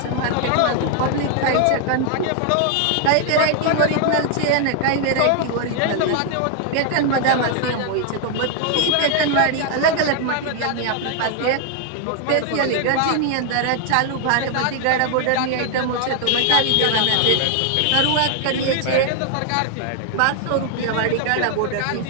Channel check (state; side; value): different; both; correlation 0.00